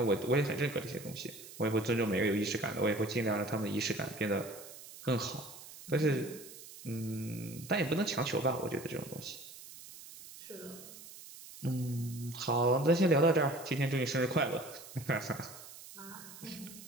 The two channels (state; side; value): noise; right; hiss, 16 dB below the sound